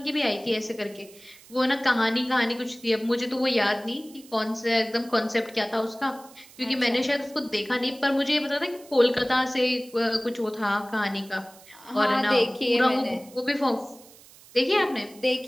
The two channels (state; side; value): noise; right; hiss, 23 dB below the sound